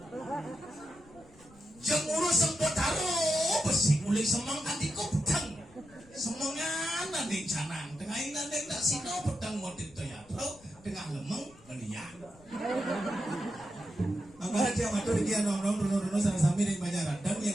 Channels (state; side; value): noise; left; rumble, 25 dB below the sound